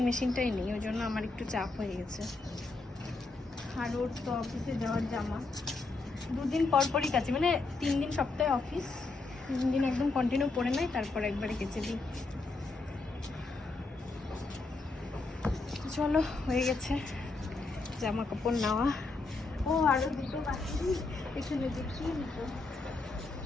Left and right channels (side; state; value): right; quieter; 3.6 dB